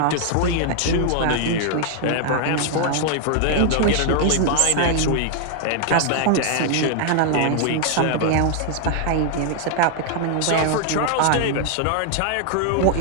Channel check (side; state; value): both; different; correlation 0.00